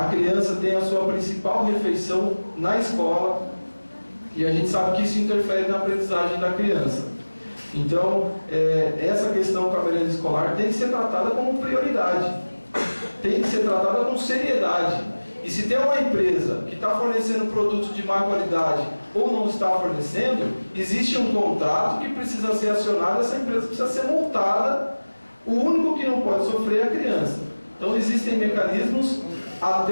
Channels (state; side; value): inverted; both; correlation -1.00